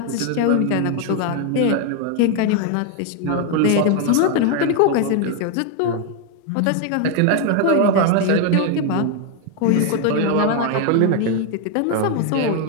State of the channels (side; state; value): both; different; correlation 0.01